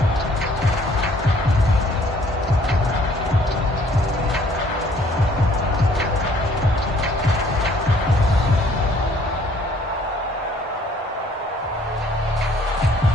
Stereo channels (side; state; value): both; normal; correlation 0.60